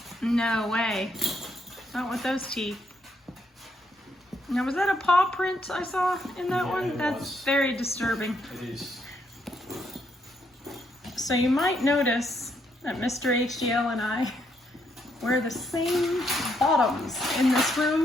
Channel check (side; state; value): both; normal; correlation 0.75